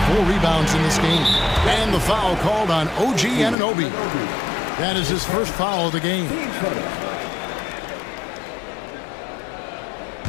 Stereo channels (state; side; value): drops out; right; at 3.6 s